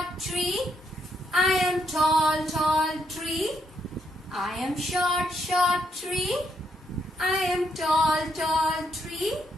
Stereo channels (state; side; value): normal; both; correlation 0.76